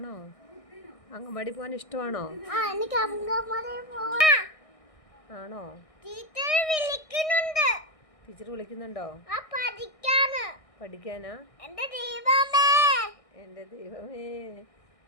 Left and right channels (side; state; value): right; late; 1.6 ms